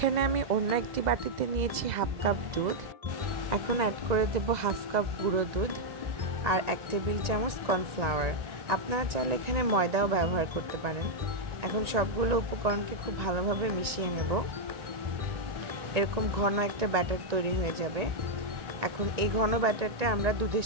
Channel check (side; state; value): left; late; 1.9 ms